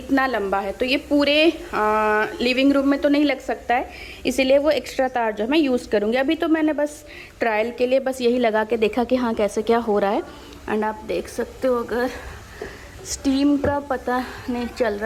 लंबा है, तो ये पूरे लिविंग रूम में तो नहीं लग सकता है, इसीलिए वो एक्स्ट्रा तार जो है मैं यूज़ करूँगी। अभी तो मैंने बस ट्रायल के लिए बस यही लगा के देखा कि हाँ कैसे क्या हो रहा है। एंड आप देख सकते हो, अगर स्टीम का पता नहीं चल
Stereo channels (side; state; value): both; identical; correlation 1.00